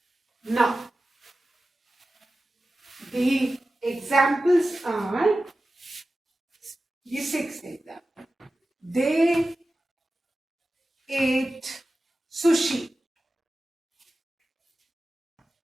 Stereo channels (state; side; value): normal; both; correlation 0.94